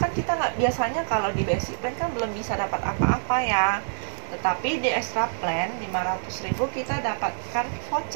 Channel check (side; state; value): left; silent; digital silence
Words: kita nggak, biasanya kalau di basic plan kan belum bisa dapat apa-apa ya. Tetapi di extra plan 500.000 kita dapatkan